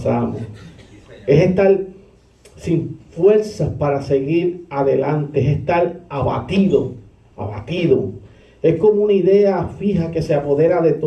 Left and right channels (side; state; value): both; identical; correlation 1.00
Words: Es estar sin fuerzas para seguir adelante, es estar abatido. Es como una idea fija que se apodera de